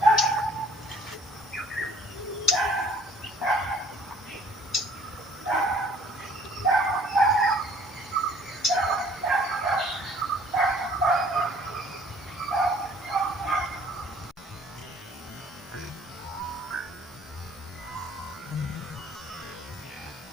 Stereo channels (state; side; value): normal; both; correlation 0.57